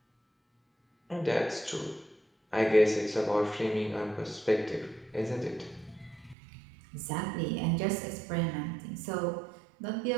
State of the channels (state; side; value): drops out; left; at 6.4 s